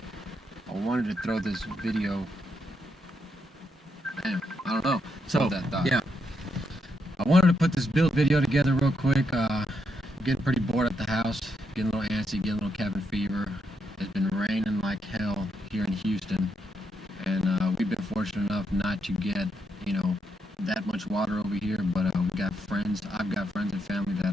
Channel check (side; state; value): both; normal; correlation 0.80